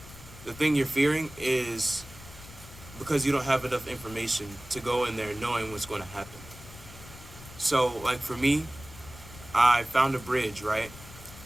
the thing you're fearing is because you don't have enough information to go in there knowing what's going to happen. So, like for me, I found a bridge, right?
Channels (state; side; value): noise; left; rumble, 17 dB below the sound